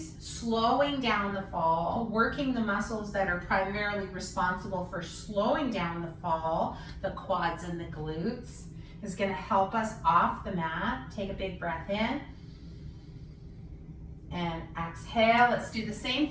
slowing down the fall, working the muscles that are primarily responsible for slowing down the fall, the quads and the glutes, is going to help us off the mat. Take a big breath in and exhale. Let's do the same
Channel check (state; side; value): identical; both; correlation 1.00